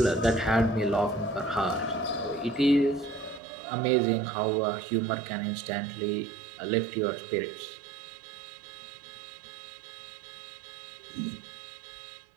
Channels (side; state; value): left; drops out; at 3.4 s